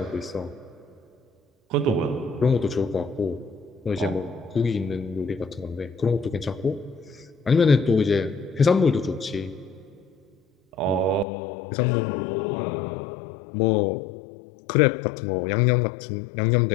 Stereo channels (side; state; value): right; drops out; at 11.2 s